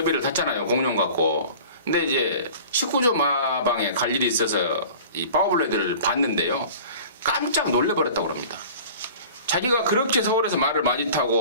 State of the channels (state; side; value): inverted; both; correlation -0.42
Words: 탔잖아요. 공룡 갖고. 근데 이제 19조 마방에 갈 일이 있어서 이 파워블레이드를 봤는데요. 깜짝 놀래버렸다고 합니다. 자기가 그렇게 서울에서 말을 많이